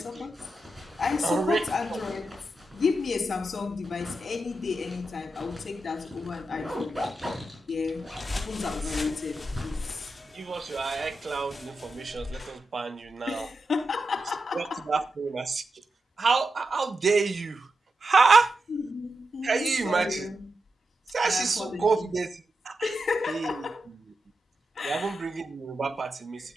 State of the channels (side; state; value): both; normal; correlation 0.88